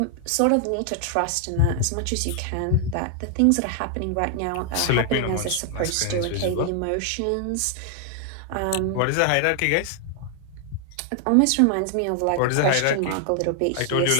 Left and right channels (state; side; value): different; both; correlation 0.00